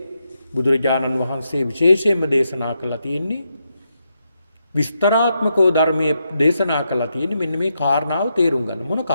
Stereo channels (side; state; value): both; inverted; correlation -0.82